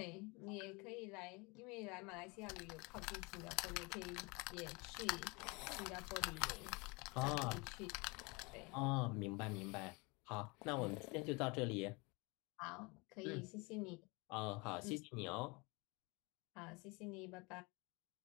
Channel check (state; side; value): quieter; right; 27.9 dB